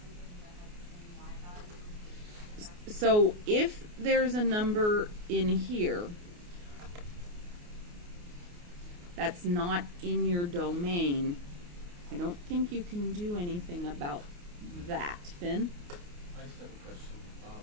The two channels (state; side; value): late; left; 28 ms